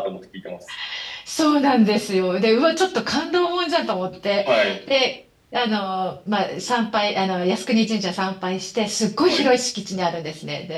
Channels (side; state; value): both; identical; correlation 1.00